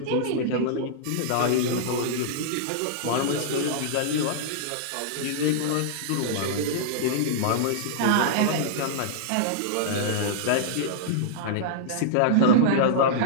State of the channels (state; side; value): different; both; correlation -0.02